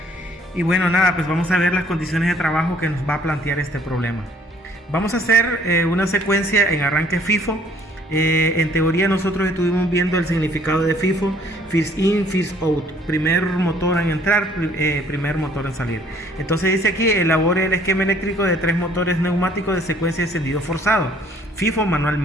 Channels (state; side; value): normal; both; correlation 0.60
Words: Y bueno, nada, pues vamos a ver las condiciones de trabajo que nos va a plantear este problema. Vamos a hacer una secuencia en arranque FIFO. En teoría nosotros estuvimos viendo el significado de FIFO: first in, first out, primer motor en entrar, primer motor en salir. Entonces dice aquí: elabore el esquema eléctrico de 3 motores neumáticos de secuencia de encendido forzado, FIFO